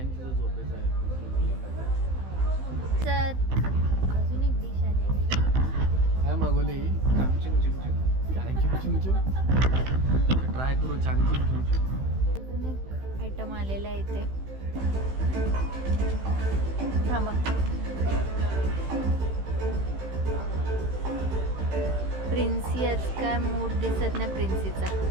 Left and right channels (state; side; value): late; left; 15 ms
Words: तिचा झोपेचा आहे. तर अजून एक डिश आलेली. काय मागवली चांगचिंग चिमचिम. चांगचिंग चिमचिम. ट्राय करू चांगचिंग चिमचिम. अजून एक आयटम आलेला आहे इथे. थांबा. प्रिन्सी आज काय मूड दिसत नाही प्रिन्सीचा.